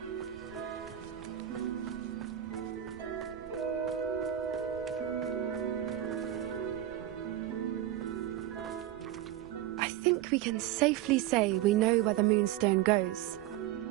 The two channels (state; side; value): quieter; left; 12.5 dB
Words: we can safely say we know where the Moonstone goes.